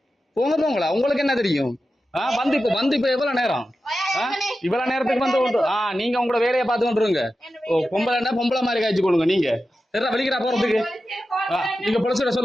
போங்களா? உங்களுக்கு என்ன தெரியும்? வந்து இப்ப எவ்வளவு நேரம்? இவ்வளவு நேரத்துக்கு வந்து நீங்க உங்களோட வேலையை பார்த்து கொண்டுருங்க. பொம்பளை மாதிரி காய்ச்சி கொடுங்க. நீங்க வலிக்கிறா போறதுக்கு நீங்க பொலிசிட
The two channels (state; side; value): normal; both; correlation 0.92